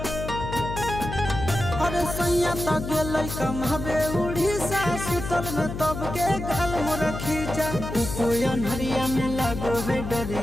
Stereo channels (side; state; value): left; noise; hum, 7 dB below the sound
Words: अरे सैया तो गेल कमाबे उड़ीसा सुतल में तब के गाल मोर खींचा। कोयन हरिया में लागो है